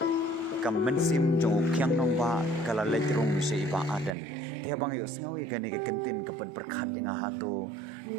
Kamensim Jong Kyang Nongba, Kalaletrum, Sheba Aden. Tiabang yung sengawi gani kakantin kapag berkat dengan hato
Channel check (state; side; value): drops out; left; at 4.2 s